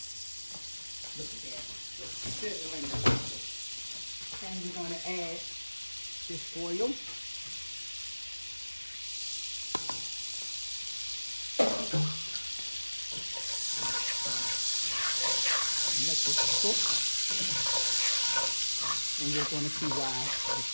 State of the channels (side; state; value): both; inverted; correlation -1.00